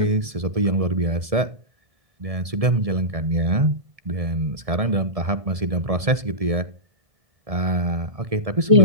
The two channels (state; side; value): late; left; 1.7 ms